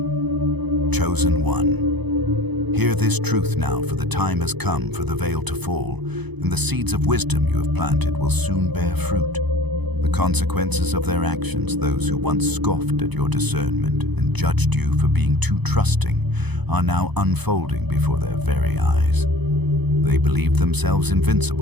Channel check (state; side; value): late; left; 0.99 ms